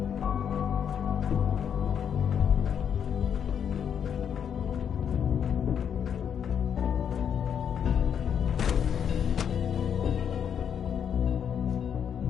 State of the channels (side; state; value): right; quieter; 8.1 dB